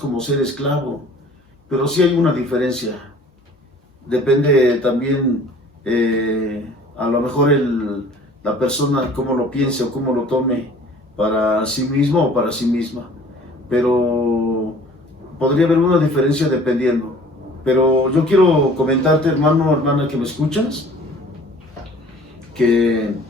ser esclavo. Pero sí hay una diferencia. Depende también, a lo mejor la persona cómo lo piense o cómo lo tome para sí mismo o para sí misma. Pero podría haber una diferencia dependiendo. Pero yo quiero comentarte, hermano o hermana que me escuchas, que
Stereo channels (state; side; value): normal; both; correlation 0.50